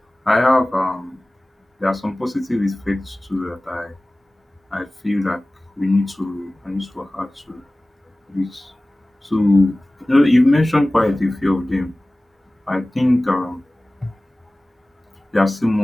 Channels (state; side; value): normal; both; correlation 0.98